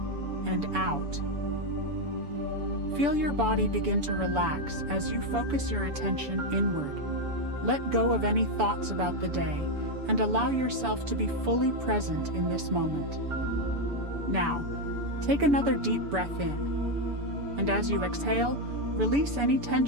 and out. Feel your body begin to relax as you focus your attention inward. Let go of any thoughts about the day and allow yourself to be fully present in this moment. Now, take another deep breath in. And as you exhale, release any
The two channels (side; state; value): left; late; 7.0 ms